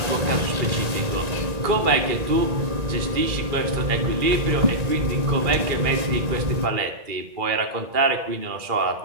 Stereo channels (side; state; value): left; late; 1.9 ms